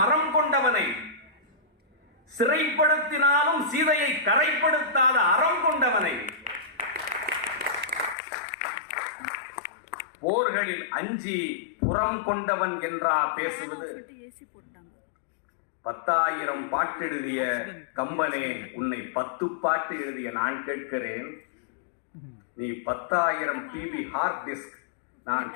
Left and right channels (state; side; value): drops out; right; at 8.2 s